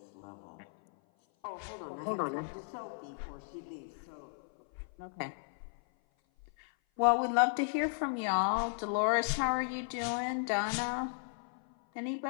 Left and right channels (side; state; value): right; silent; 54 dB below the other